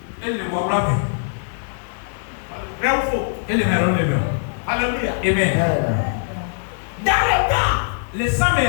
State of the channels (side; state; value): right; silent; digital silence